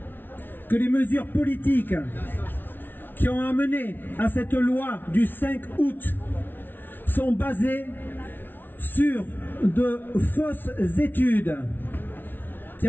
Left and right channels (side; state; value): right; late; 0.096 ms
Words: que les mesures politiques qui ont amené à cette loi du 5 août sont basées sur de fausses études qui